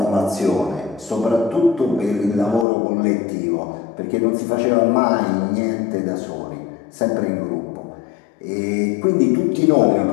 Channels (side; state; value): right; drops out; at 2.7 s